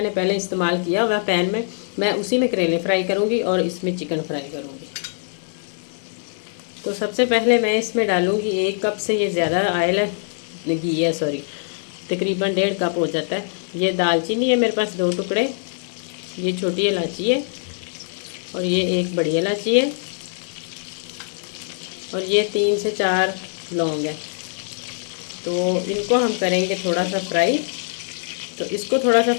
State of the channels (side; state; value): right; silent; digital silence